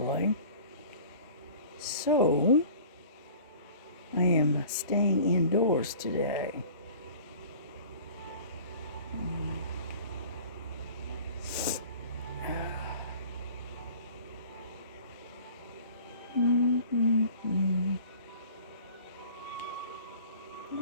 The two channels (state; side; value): inverted; both; correlation -0.45